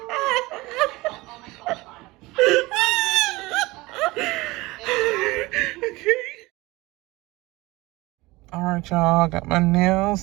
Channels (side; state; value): left; quieter; 21.3 dB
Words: Alright, y'all, got my nails